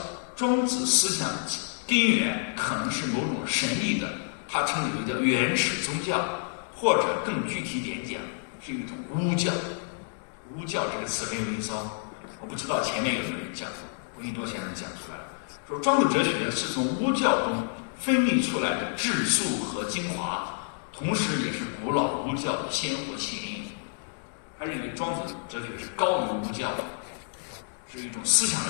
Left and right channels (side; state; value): right; silent; digital silence